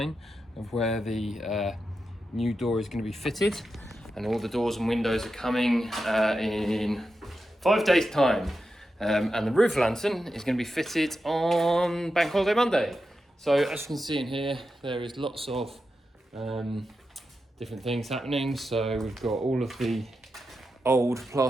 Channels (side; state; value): both; normal; correlation 0.89